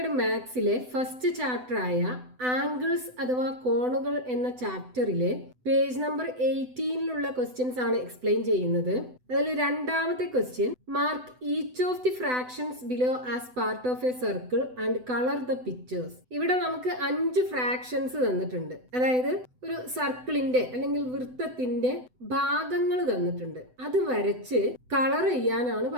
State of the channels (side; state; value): left; late; 7.9 ms